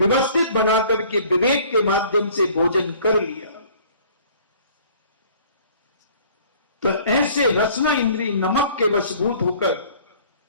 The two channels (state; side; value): inverted; both; correlation -0.53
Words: बना करके विवेक के माध्यम से भोजन कर लिया। तो ऐसे रसना इंद्री नमक के वशभूत होकर